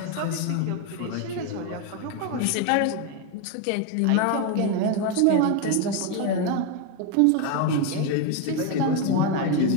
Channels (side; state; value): both; different; correlation 0.02